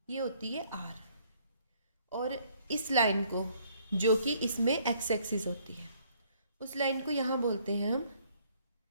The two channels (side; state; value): both; inverted; correlation -0.63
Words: ये होती है आर, और इस लाइन को जो कि इसमें एक्स एक्सिस होती है उस लाइन को यहाँ बोलते हैं हम